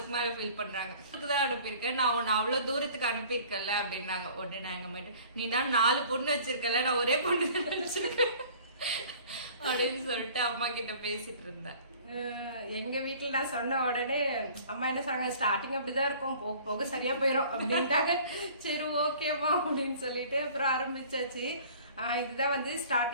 மேல ஃபீல் பண்றாங்க. தான் அனுப்பியிருக்கேன், நான் உன்னை அவ்வளவு தூரத்துக்கு அனுப்பியிருக்கல அப்படின்னாங்க. உடனே நான் எங்க அம்மா நீ நான் 4 பொண்ணு வச்சிருக்கல, நான் ஒரே பொண்ணு வச்சிருக்கேன் அப்படின்னு சொல்லிட்டு அம்மா கிட்ட பேசிட்டு இருந்தேன். எங்க வீட்டுல நான் சொன்ன உடனே அம்மா என்ன சொன்னாங்க, ஸ்டார்டிங் அப்படிதான் இருக்கும், போக போக சரியா போயிரும் அப்படின்ட்டாங்க. சரி ஓகேமா அப்படின்னு சொல்லிட்டு அப்புறம் ஆரம்பிச்சாச்சு. இதுதான் வந்து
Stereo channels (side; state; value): both; inverted; correlation -0.49